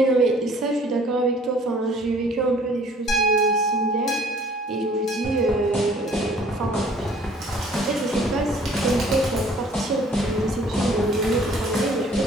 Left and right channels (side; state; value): both; normal; correlation 0.55